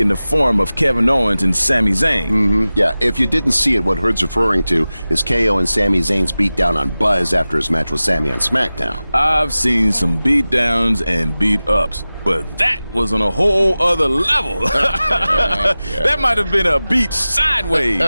in the form of Kevin Owens and Sami Zayn. Mm-hmm. Yeah, if you didn't see it, what Hood's referring to is KO and Sami Zayn's beatdown on Buzz after his match with Sami on SmackDown. I've seen some beatdowns and beat-ups, but that was on a whole other level. That might have been a beat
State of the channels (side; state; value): both; inverted; correlation -0.96